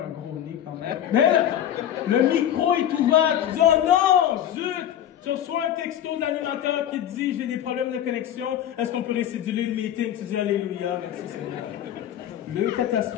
un gros nez quand même. Mais là, le micro est ouvert. Tu dis, oh non, zut! Tu reçois un texto de l'animateur qui te dit, j'ai des problèmes de connexion, est-ce qu'on peut récéduler le meeting? Tu dis, alléluia, merci Seigneur. Le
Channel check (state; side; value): quieter; right; 10.7 dB